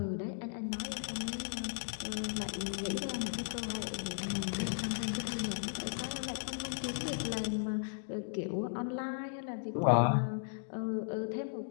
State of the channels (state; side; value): silent; right; digital silence